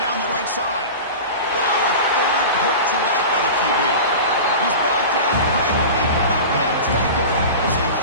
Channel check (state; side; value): inverted; both; correlation -0.31